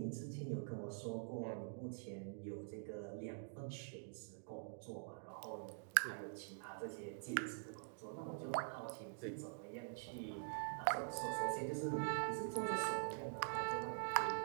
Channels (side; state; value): left; silent; digital silence